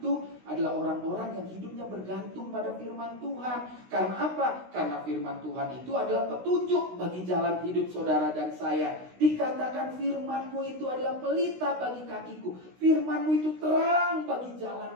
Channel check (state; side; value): late; left; 16 ms